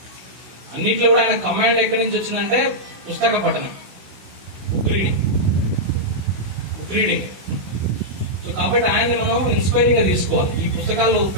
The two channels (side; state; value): left; late; 16 ms